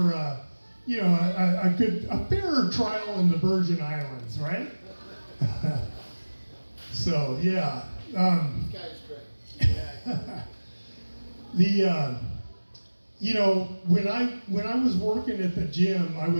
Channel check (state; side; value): inverted; both; correlation -1.00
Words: a fairer trial in the Virgin Islands, right? So, yeah. This guy's great. When I was working at the gym, I